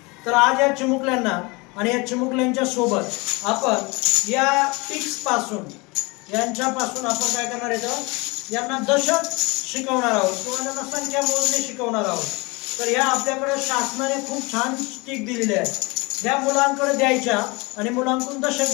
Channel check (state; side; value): quieter; right; 26.2 dB